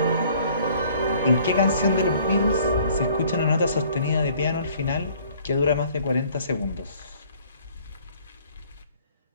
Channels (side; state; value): both; inverted; correlation -0.57